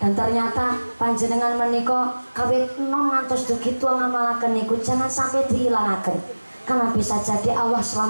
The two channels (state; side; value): inverted; both; correlation -1.00